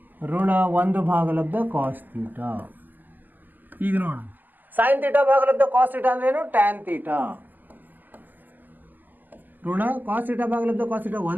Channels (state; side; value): late; left; 0.086 ms